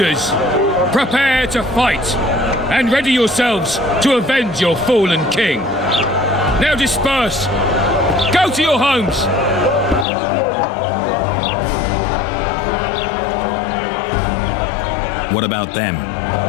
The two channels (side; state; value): right; drops out; at 10.1 s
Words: Prepare to fight. And ready yourselves to avenge your fallen king. Now disperse. Go to your homes. What about them?